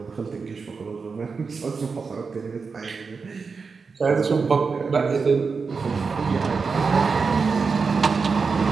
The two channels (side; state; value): left; quieter; 5.0 dB